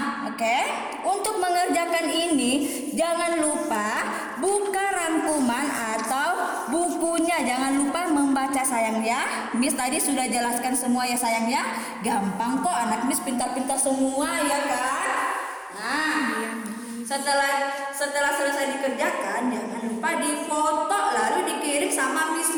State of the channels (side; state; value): both; identical; correlation 1.00